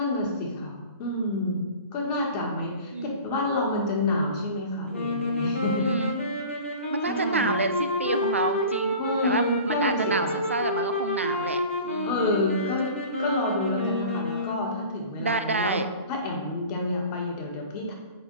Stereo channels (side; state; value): both; inverted; correlation -0.40